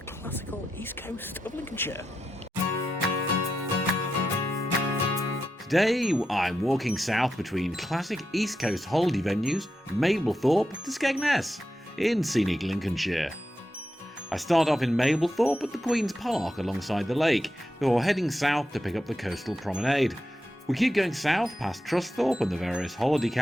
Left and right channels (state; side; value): normal; both; correlation 0.87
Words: east coast of Lincolnshire. Today I'm walking south between classic east coast holiday venues Mablethorpe to Skegness in scenic Lincolnshire. I start off in Mablethorpe at the Queen's Park alongside the lake, before heading south to pick up the coastal promenade. We keep going south past Trusthorpe and the various holiday